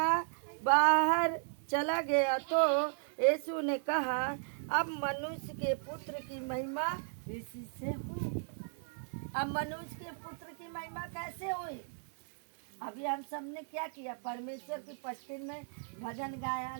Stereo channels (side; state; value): left; silent; digital silence